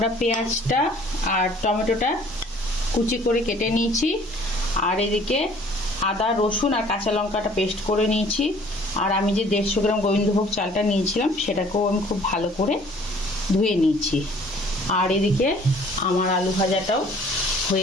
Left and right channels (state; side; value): normal; both; correlation 0.55